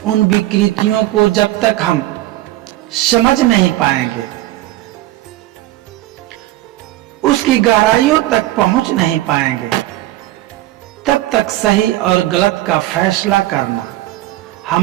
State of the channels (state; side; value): quieter; left; 15.9 dB